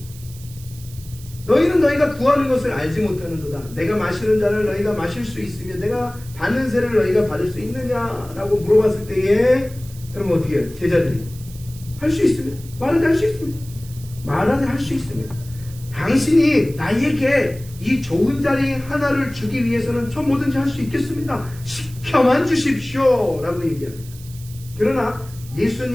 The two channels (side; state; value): right; noise; hiss, 20 dB below the sound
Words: 너희는 너희가 구하는 것을 알지 못하는도다. 내가 마시는 잔을 너희가 마실 수 있으며 내가 받는 세례를 너희가 받을 수 있느냐라고 물어봤을 때에 그럼 어떻게 해요? 제자들이 할 수 있습니다. 말하되 할 수 있습니다. 말하되 할 수 있습니다. 당신이 나에게 이 좋은 자리 하나를 주기 위해서는 저 뭐든지 할 수 있겠습니다. 시켜만 주십시오 라고 얘기합니다. 그러나